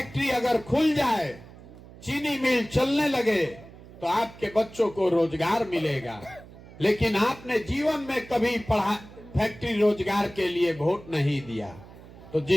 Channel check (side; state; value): right; noise; hum, 19 dB below the sound